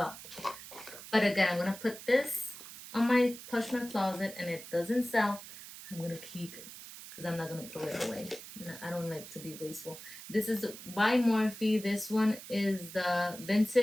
But again, I'm gonna put this on my Poshmark closet, and it doesn't sell. I'm gonna keep it because I'm not gonna throw it away. I don't like to be wasteful. This is by Morphe. This one is the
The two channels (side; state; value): right; noise; hiss, 14 dB below the sound